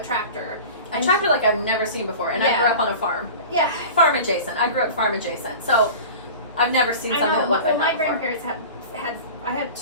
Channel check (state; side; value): inverted; both; correlation -0.36